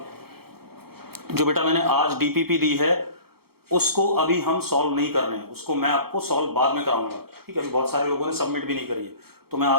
जो बेटा मैंने आज डीपीपी दी है उसको अभी हम सॉल्व नहीं कर रहे हैं, उसको मैं आपको सॉल्व बाद में कराऊंगा। ठीक है, अभी बहुत सारे लोगों ने सबमिट भी नहीं करी है, तो मैं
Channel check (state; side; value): late; left; 0.95 ms